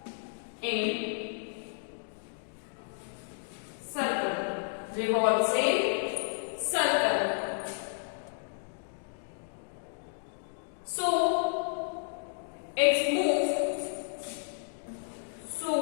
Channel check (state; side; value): silent; right; digital silence